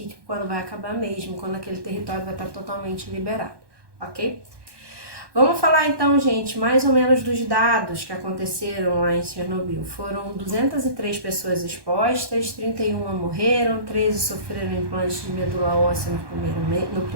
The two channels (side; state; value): left; late; 1.2 ms